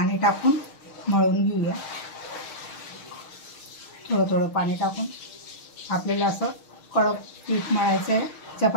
टाकून मळून घेऊया। थोडं थोडं पाणी टाकून आपल्याला असं कडक पीठ मळायचं आहे,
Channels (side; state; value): right; late; 6.4 ms